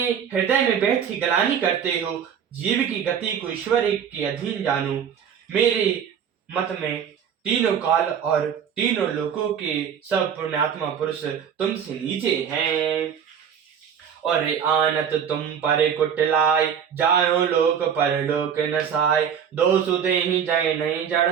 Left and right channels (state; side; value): quieter; left; 8.0 dB